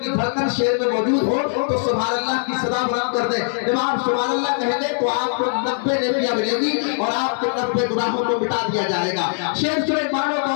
धड़कन शेर में मौजूद हो तो सुभान अल्लाह की सदा बुलंद कर दे। जब आप सुभान अल्लाह कहेंगे तो आपको 90 नेकियां मिलेगी और आपके 90 गुनाहों को मिटा दिया जाएगा। शेर सुने, मानो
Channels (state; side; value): silent; right; 61 dB below the other